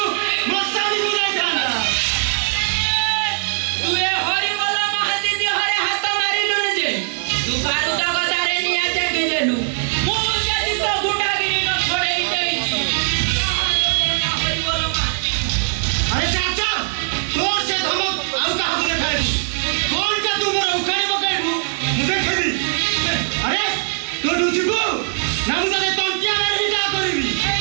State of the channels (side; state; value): left; silent; 66 dB below the other